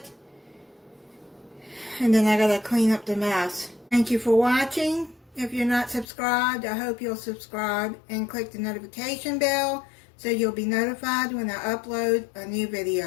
And then I gotta clean up the mess. Thank you for watching. If you're not subscribed, I hope you'll subscribe and click the notification bell so you'll be notified when I upload a new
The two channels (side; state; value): right; drops out; at 6.1 s